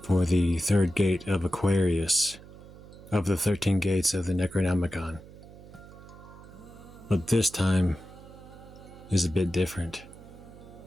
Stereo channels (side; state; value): right; noise; hum, 18 dB below the sound